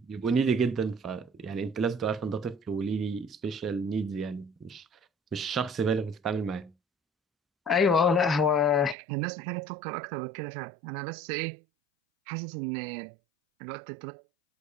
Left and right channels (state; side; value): drops out; left; at 9.0 s